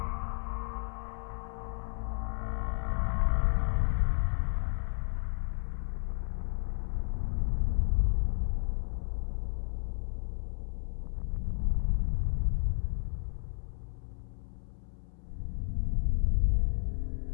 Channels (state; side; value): silent; right; 56 dB below the other